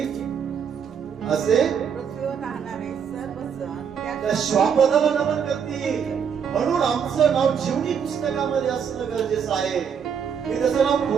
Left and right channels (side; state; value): left; quieter; 7.3 dB